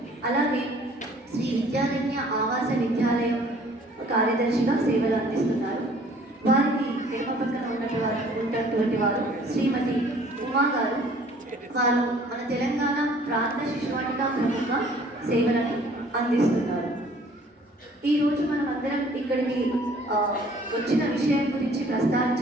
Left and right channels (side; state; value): both; normal; correlation 0.55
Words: అలాగే శ్రీ విద్యారణ్య ఆవాస విద్యాలయం కార్యదర్శిగా సేవలు అందిస్తున్నారు. వారికి ఎడమ పక్కన ఉన్నటువంటి వారు శ్రీమతి ఉమా గారు. వారు మన తెలంగాణ ప్రాంత శిశువాటిక ప్రముఖ సేవలను అందిస్తున్నారు. ఈరోజు మనం అందరం ఇక్కడికి వచ్చిన విషయం గురించి